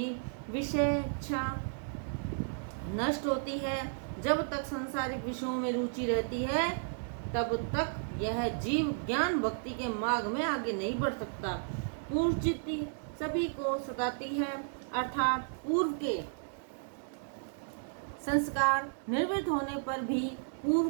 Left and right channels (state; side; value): silent; left; digital silence